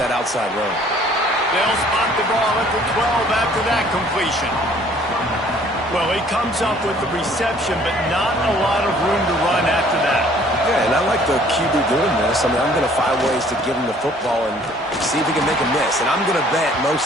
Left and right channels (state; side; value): normal; both; correlation 0.57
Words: outside run. They'll spot the ball at the 12 after that completion. Well, he comes up with the reception, but not a lot of room to run after that. Yeah, and I like the QB doing this. I mean, I'm going to find ways to give him the football and see if he can make a miss. And I'm going to bet most